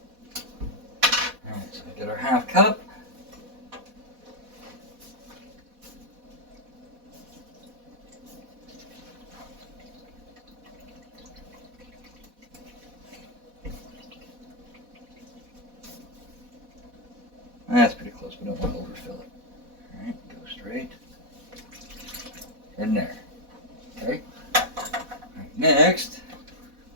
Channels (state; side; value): late; left; 4.1 ms